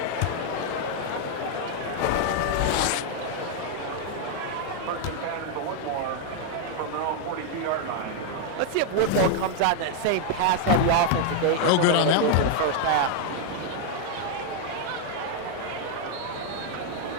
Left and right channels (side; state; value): both; different; correlation 0.00